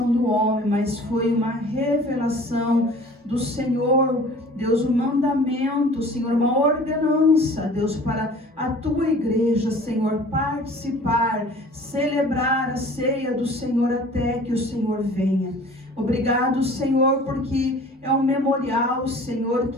do homem, mas foi uma revelação do Senhor, Deus, um mandamento, Senhor, uma ordenança, Deus, para a tua igreja, Senhor, participar, celebrar a ceia do Senhor até que o Senhor venha. Obrigado, Senhor, porque é um memorial, Senhor,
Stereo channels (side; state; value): both; normal; correlation 0.47